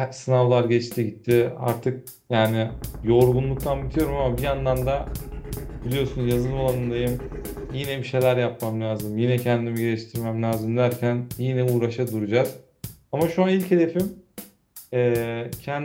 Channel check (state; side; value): identical; both; correlation 1.00